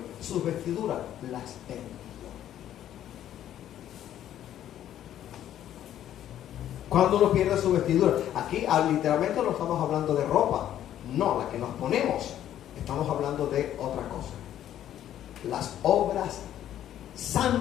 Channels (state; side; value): quieter; right; 11.4 dB